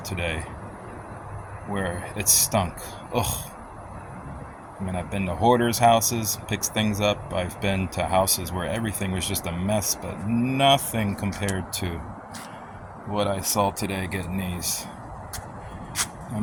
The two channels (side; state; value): both; identical; correlation 1.00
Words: where it stunk. Ugh. I've been to hoarders' houses, picked things up. I've been to houses where everything was just a mess, but nothing compared to what I saw today getting these.